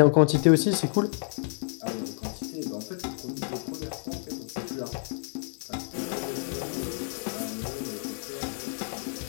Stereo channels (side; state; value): right; silent; 57 dB below the other